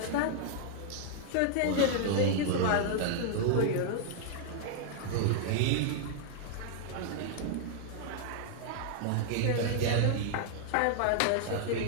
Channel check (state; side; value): different; both; correlation -0.01